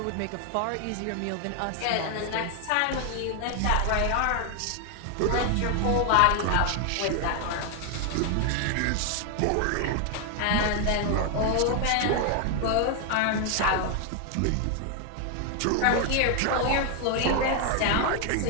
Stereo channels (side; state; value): both; different; correlation 0.00